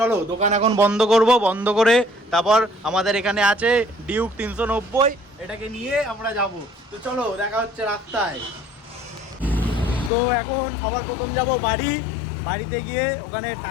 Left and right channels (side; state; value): right; drops out; at 10.1 s